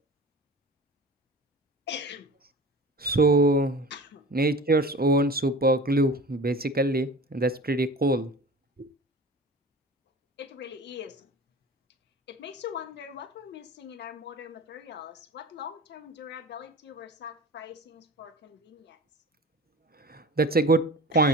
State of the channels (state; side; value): normal; both; correlation 0.37